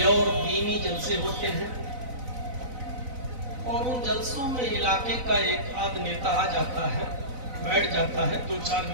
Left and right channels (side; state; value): left; late; 4.0 ms